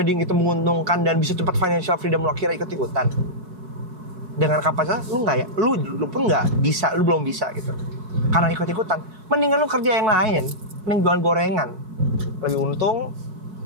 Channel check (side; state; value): left; late; 5.4 ms